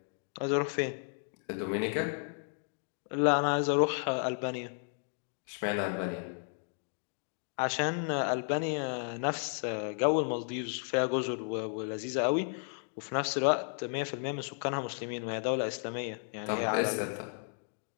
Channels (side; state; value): right; silent; 55 dB below the other